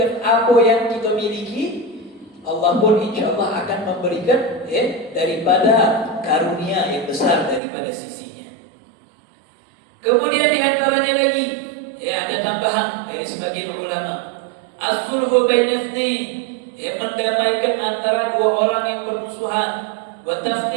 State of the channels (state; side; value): drops out; left; at 7.6 s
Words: apa yang kita miliki, Allah pun insyaallah akan memberikan daripada karunia yang besar daripada sisinya. Kemudian diantaranya lagi, ada tambahan dari sebagian ulama, as-sulhu baina itsnain, mendamaikan antara dua orang yang bermusuhan, wa